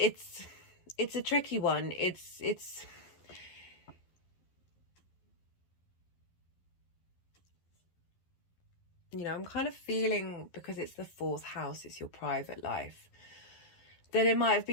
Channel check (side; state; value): right; late; 11 ms